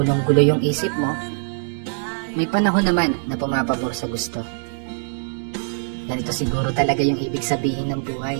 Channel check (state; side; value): silent; left; digital silence